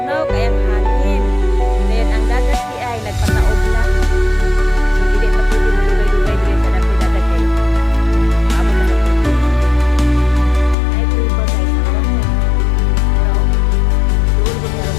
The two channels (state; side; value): drops out; right; at 10.8 s